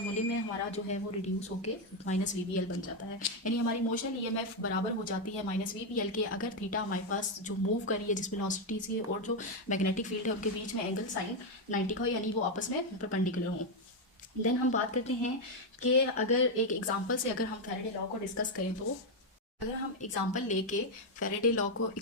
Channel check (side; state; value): both; normal; correlation 0.04